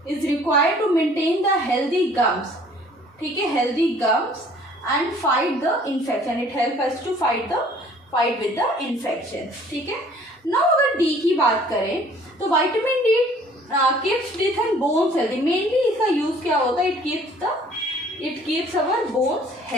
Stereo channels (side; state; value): both; normal; correlation 0.55